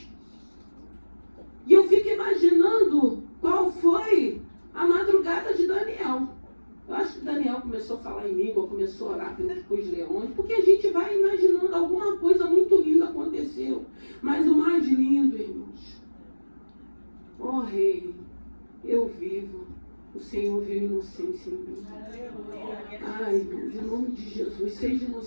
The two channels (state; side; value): inverted; both; correlation -1.00